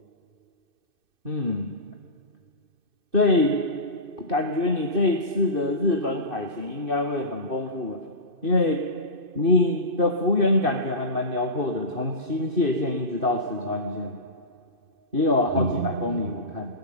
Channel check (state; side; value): late; left; 2.6 ms